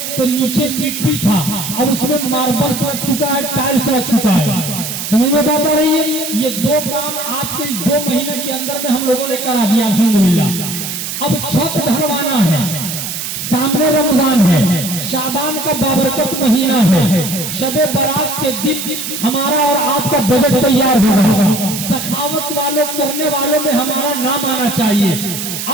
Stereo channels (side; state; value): right; noise; hiss, 5 dB below the sound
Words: तो नीचे मिट्टी था और उसमें मार्बल लग चुका है, टाइल्स लग चुका है। समझ में बात आ रही है? ये 2 काम आपके 2 महीने के अंदर में हम लोगों ने करा दिया अल्हम्दुलिल्लाह। अब छत ढलवाना है, सामने रमजान है, शाबान का बाबरकत महीना है, शबे बारात के दिन हमारा और आपका बजट तैयार हो रहा है। सखावत वालों करने वालों में हमारा नाम आना चाहिए।